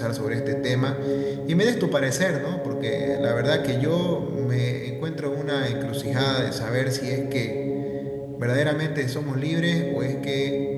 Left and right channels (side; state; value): both; identical; correlation 1.00